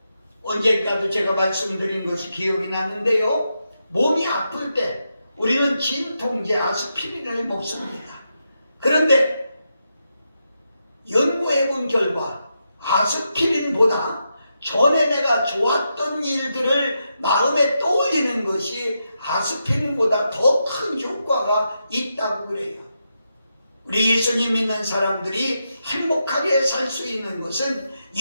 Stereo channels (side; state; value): both; inverted; correlation -0.85